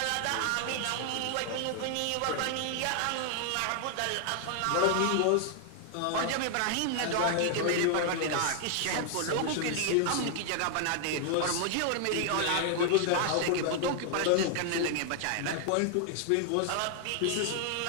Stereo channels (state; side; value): different; both; correlation 0.00